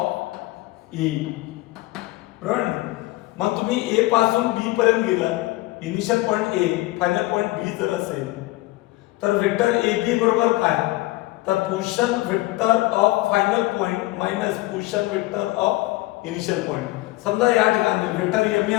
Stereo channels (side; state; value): right; quieter; 19.6 dB